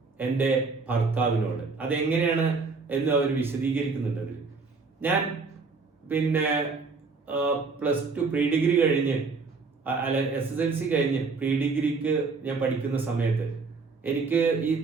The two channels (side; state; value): left; quieter; 4.4 dB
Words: എൻ്റെ ഭർത്താവിനോട്. അതെങ്ങനെയാണ് എന്ന് അവർ വിശദീകരിക്കുന്നുണ്ട്. ഞാൻ +2 പ്രീ ഡിഗ്രി കഴിഞ്ഞ് SSLC കഴിഞ്ഞ് പ്രീ ഡിഗ്രിക്ക് ഞാൻ പഠിക്കുന്ന സമയത്ത് എനിക്ക് ഈ